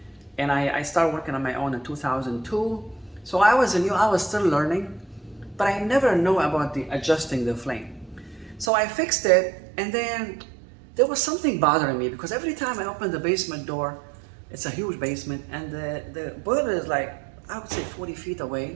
and I started working on my own in 2002. So I was still learning, but I never knew about adjusting the flame. So I fixed it, and then there was something bothering me, because every time I opened the basement door, it's a huge basement, and the boiler is like, I would say 40 feet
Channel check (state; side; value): drops out; left; at 8.7 s